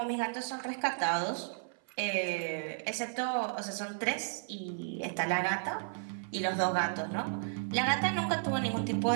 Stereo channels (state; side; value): silent; left; 55 dB below the other